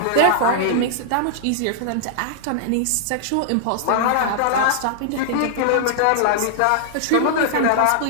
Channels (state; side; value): different; both; correlation -0.01